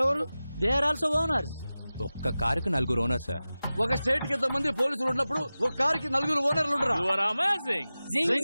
They are also owners. ఒక్క కారుకి 4 ఓనర్స్ సార్. ఒక స్టేట్ కి ఎంతమంది పోలీసులు ఉన్నప్పుడు ఒక కారుకి 4 ఓనర్లు ఉండరా? You are amazing. Zing,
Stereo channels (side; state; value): both; inverted; correlation -0.96